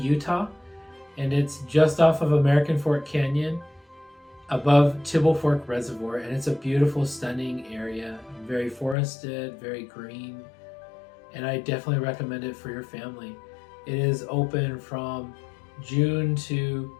and it's just off of American Fork Canyon above Tibble Fork Reservoir, and it's a beautiful, stunning area, very forested, very green, and I definitely recommend it for your family. It is open from June to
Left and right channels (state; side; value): drops out; right; at 9.0 s